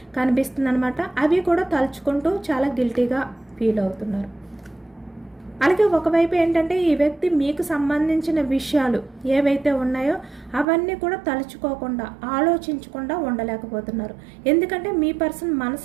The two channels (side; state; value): left; drops out; at 10.7 s